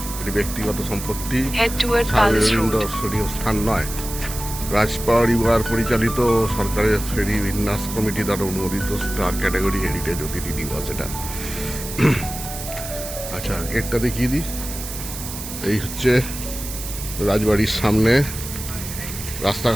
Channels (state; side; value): noise; right; hiss, 9 dB below the sound